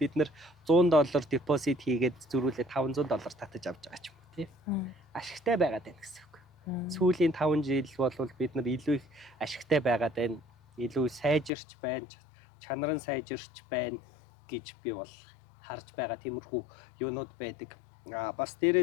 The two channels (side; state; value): right; drops out; at 11.5 s